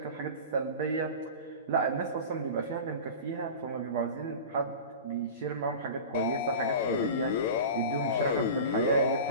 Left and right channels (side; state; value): both; inverted; correlation -0.32